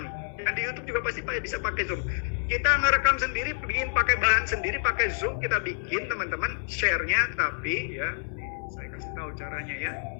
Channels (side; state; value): right; silent; digital silence